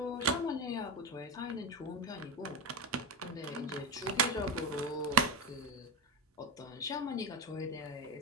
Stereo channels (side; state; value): both; normal; correlation 0.13